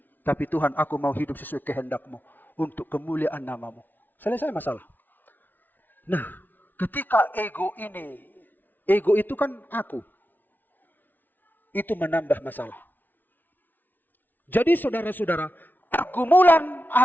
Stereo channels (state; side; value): late; right; 0.086 ms